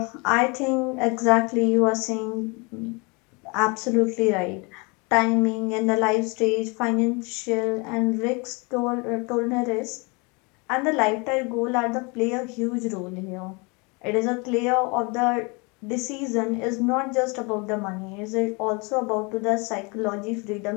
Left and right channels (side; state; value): right; quieter; 29.7 dB